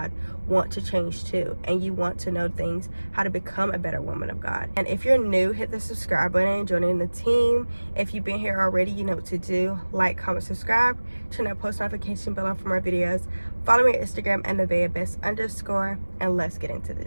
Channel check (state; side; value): inverted; both; correlation -1.00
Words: want to change too, and you want to know things, how to become a better woman of God. And if you're new, hit the subscribe button and join in the team. If you've been here already, you know what to do. Like, comment, subscribe, turn that post notification bell on for more videos. Follow me on Instagram at NevaehBest_, and let's get into